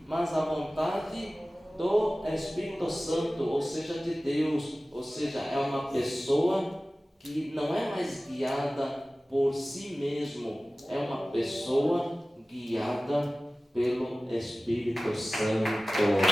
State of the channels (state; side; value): normal; both; correlation 0.97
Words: mas a vontade do Espírito Santo, ou seja, de Deus, ou seja, é uma pessoa que não é mais guiada por si mesmo, é uma pessoa guiada pelo Espírito Santo.